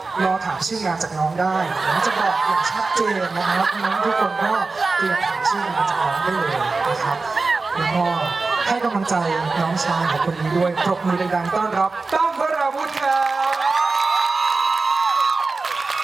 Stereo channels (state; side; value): quieter; left; 3.9 dB